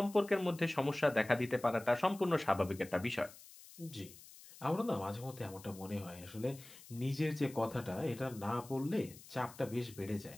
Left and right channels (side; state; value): left; noise; hiss, 19 dB below the sound